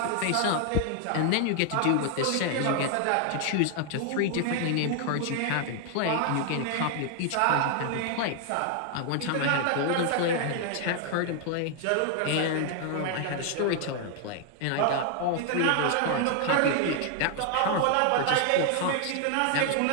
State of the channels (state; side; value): different; both; correlation 0.00